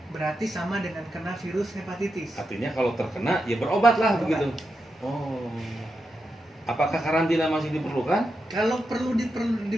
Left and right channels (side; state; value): both; normal; correlation 0.87